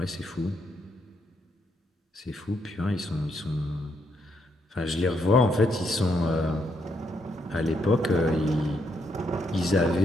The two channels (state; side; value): normal; both; correlation 0.77